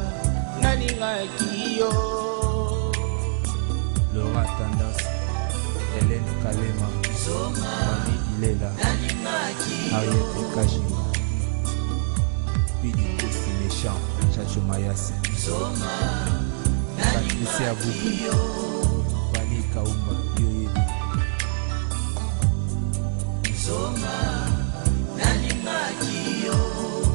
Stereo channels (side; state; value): left; silent; digital silence